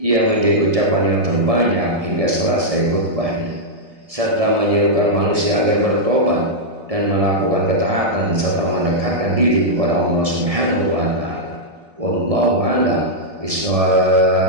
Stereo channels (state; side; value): late; left; 1.7 ms